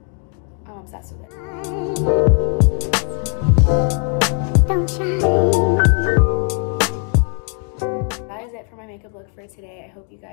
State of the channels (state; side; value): quieter; right; 38.7 dB